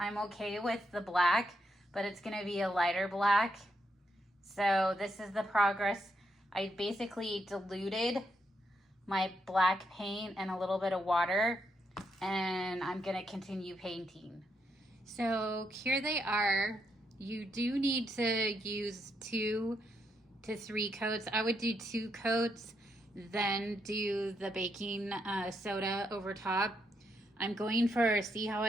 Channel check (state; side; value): normal; both; correlation 0.79